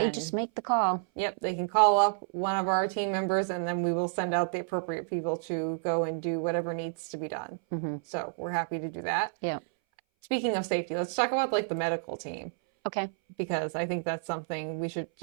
just make the call. Yep, they can call up one of our team members, and then we will send out the appropriate people to go and do whatever needs to be done. So we're happy to do that. Yeah. Speaking of safety, let's talk about like the medical team. Okay. Because I think that's something we should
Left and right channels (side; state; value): left; silent; 58 dB below the other